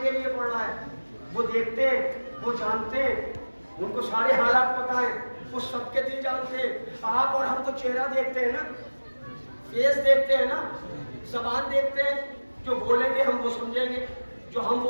کے لیے پڑھ رہا ہے. وہ دیکھتے, وہ جانتے, ان کو سارے حالات پتہ ہیں, وہ سب کے دل جانتے. آپ اور ہم تو چہرہ دیکھتے ہیں نا, فیس دیکھتے ہیں نا, زبان دیکھتے ہیں. جو بولیں گے ہم وہ سمجھیں گے, جو ہم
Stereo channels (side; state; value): both; inverted; correlation -1.00